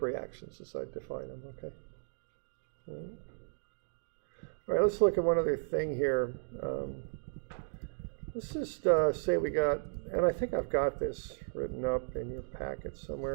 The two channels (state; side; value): silent; left; digital silence